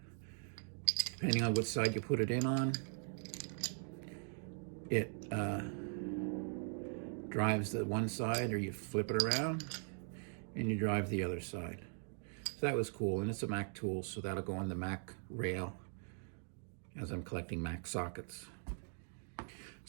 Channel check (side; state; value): left; silent; 51 dB below the other